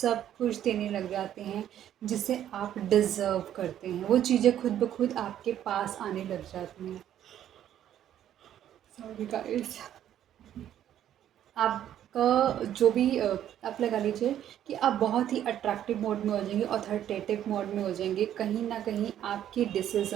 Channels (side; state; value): left; quieter; 11.0 dB